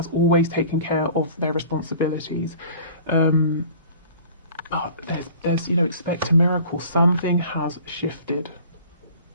always taken care of their responsibilities. There's you know, expect a miracle. Something has shifted.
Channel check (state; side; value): inverted; both; correlation -0.46